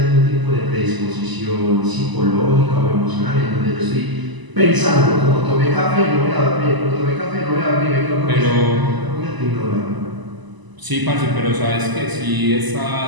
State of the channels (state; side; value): late; left; 1.0 ms